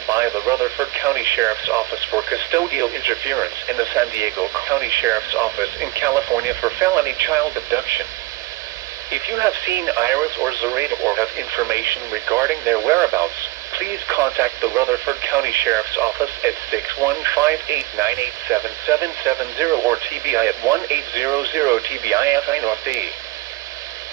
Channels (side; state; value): left; quieter; 19.8 dB